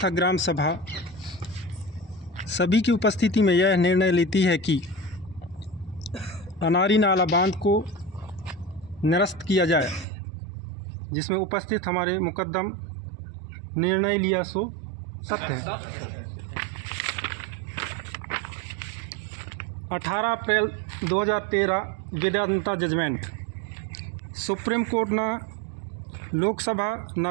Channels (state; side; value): drops out; left; at 10.1 s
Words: ग्राम सभा सभी की उपस्थिति में यह निर्णय लेती है कि अनारी नाला बांध को निरस्त किया जाए, जिसमें उपस्थित हमारे मुकद्दम निर्णय लिया सो सत्य है। 18 अप्रैल 2013 वेदांता जजमेंट। सुप्रीम कोर्ट ना लोकसभा ना